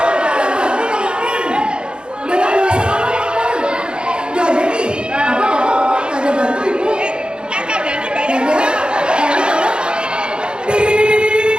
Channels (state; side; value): late; left; 0.052 ms